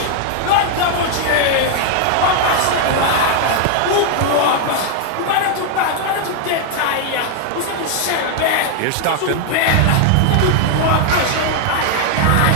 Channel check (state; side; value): different; both; correlation 0.00